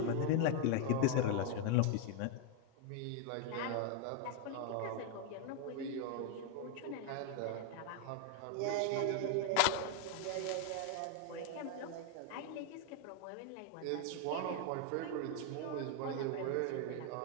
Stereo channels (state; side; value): different; both; correlation 0.01